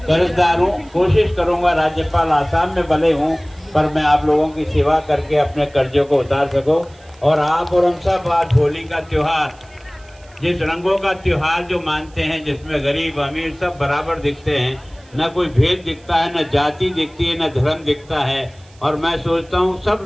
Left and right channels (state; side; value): noise; right; hiss, 29 dB below the sound